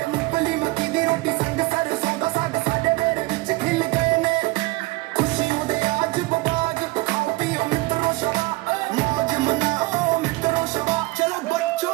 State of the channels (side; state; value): left; quieter; 21.9 dB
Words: मूंगफली मक्की दी रोटी संग सरसों दा साग साडे मेरे विच खिल गए ने खुशियों दे आज बबाग खाओ पियो मित्रों शबा मौज मनाओ मित्रों शबा चलो